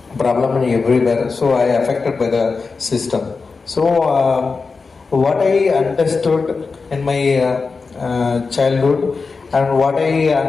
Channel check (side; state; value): right; quieter; 4.5 dB